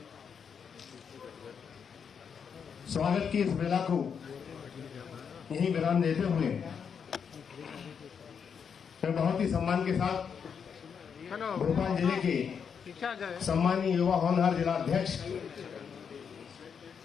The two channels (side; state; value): right; quieter; 6.8 dB